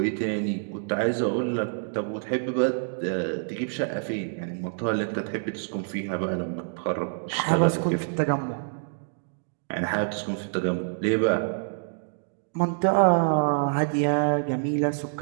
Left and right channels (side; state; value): left; silent; digital silence